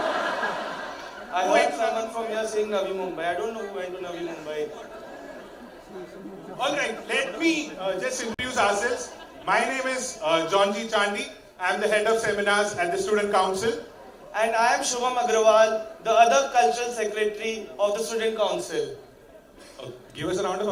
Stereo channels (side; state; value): both; identical; correlation 1.00